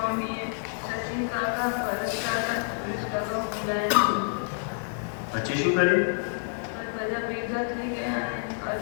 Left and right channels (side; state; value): right; silent; 59 dB below the other